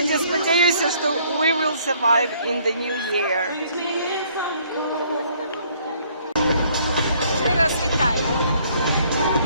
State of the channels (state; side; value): inverted; both; correlation -0.62